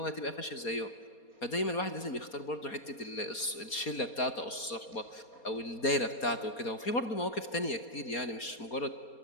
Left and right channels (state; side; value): late; right; 4.2 ms